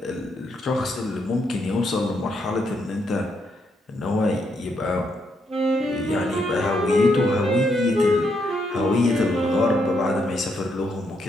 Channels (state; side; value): normal; both; correlation 0.77